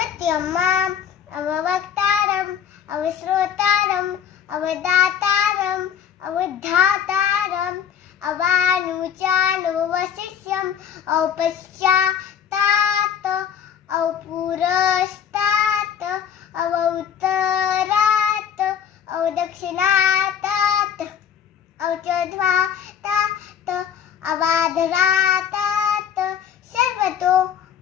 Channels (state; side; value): quieter; right; 8.6 dB